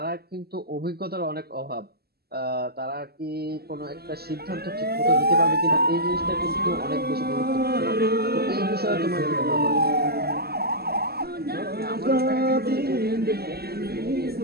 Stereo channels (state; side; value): late; left; 0.46 ms